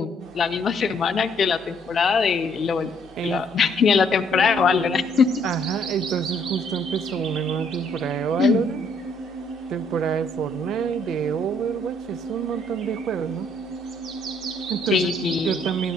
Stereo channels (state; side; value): normal; both; correlation 0.67